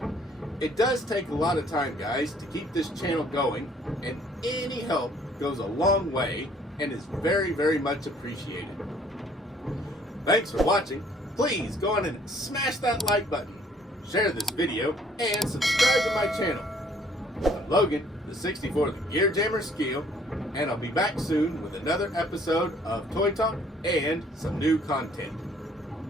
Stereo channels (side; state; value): both; normal; correlation 0.60